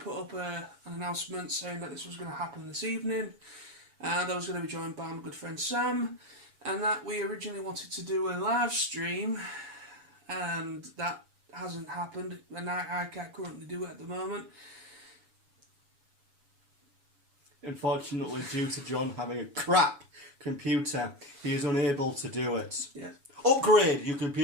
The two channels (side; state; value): left; late; 7.0 ms